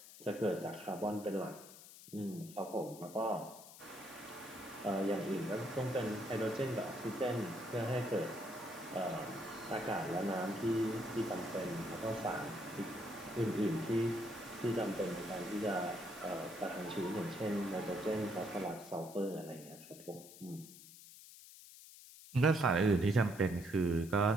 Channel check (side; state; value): left; noise; hiss, 17 dB below the sound